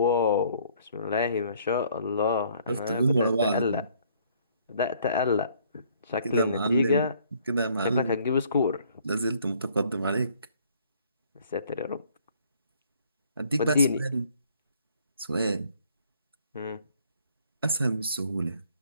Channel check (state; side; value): inverted; both; correlation -0.62